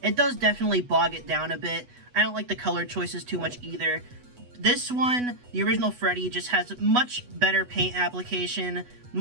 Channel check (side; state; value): left; late; 8.1 ms